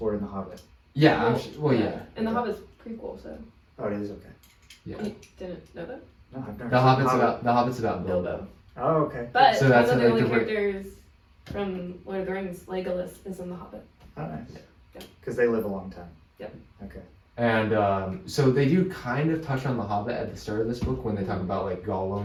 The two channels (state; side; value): identical; both; correlation 1.00